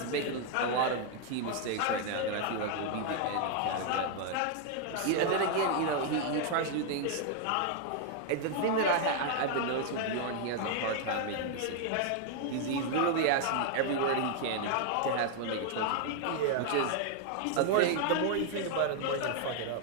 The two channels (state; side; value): different; both; correlation 0.00